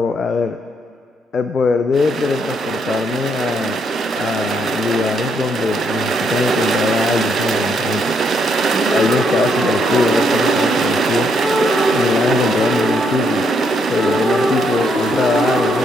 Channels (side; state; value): both; normal; correlation 0.74